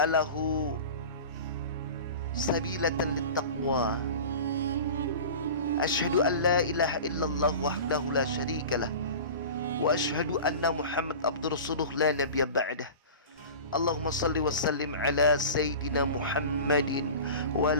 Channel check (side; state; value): both; inverted; correlation -0.35